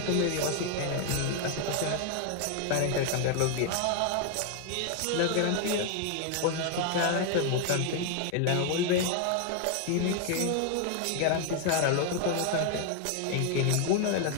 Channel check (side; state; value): both; different; correlation 0.00